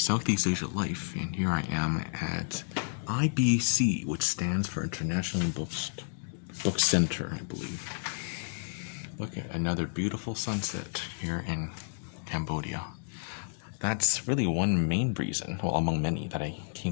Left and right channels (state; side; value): silent; right; digital silence